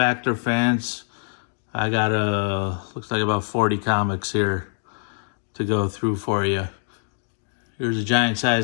fans, I got looks like about 40 comics here to go through for you. Here's a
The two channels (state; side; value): silent; right; 63 dB below the other